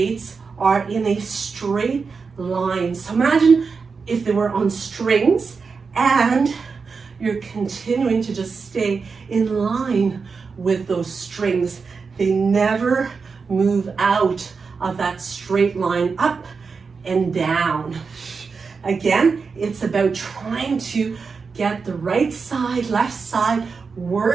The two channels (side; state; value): left; quieter; 5.0 dB